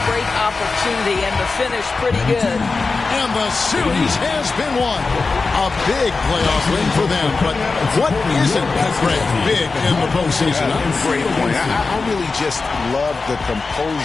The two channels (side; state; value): right; quieter; 4.1 dB